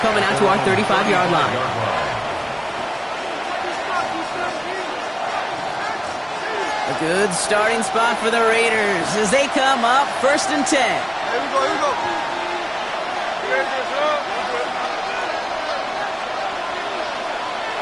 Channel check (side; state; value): both; identical; correlation 1.00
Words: out to our 35-yard line. A good starting spot for the Raiders as they come up 1st and 10. Here we go, here we go.